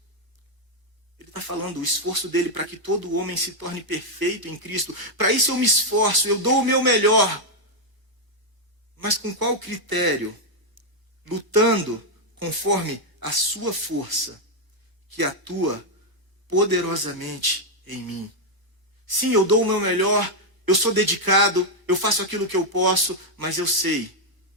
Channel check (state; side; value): late; left; 1.1 ms